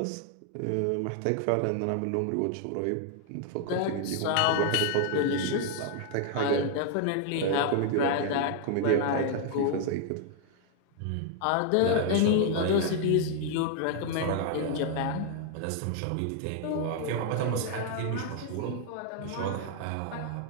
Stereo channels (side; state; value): both; different; correlation 0.00